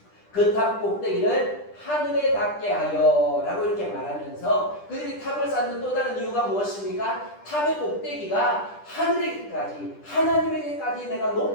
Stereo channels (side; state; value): right; late; 10 ms